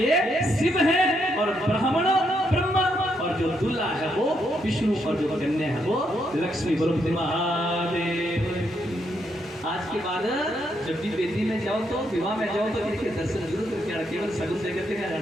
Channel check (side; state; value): both; normal; correlation 0.77